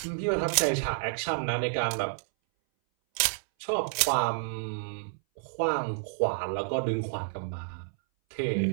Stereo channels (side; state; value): left; silent; 58 dB below the other